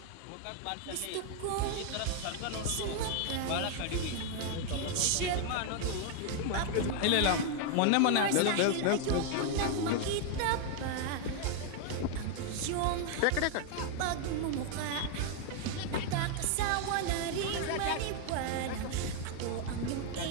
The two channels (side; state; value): both; different; correlation 0.00